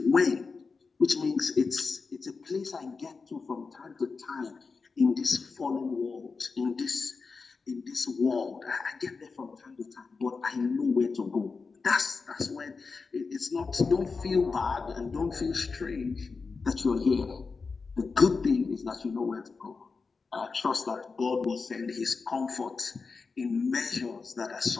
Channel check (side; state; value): right; quieter; 4.6 dB